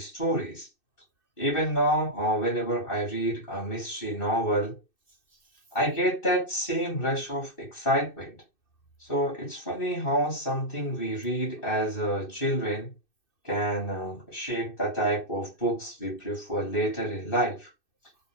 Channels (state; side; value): late; right; 2.6 ms